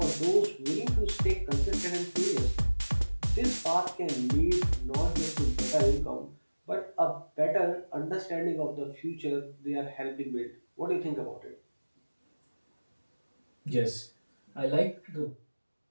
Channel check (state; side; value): inverted; both; correlation -1.00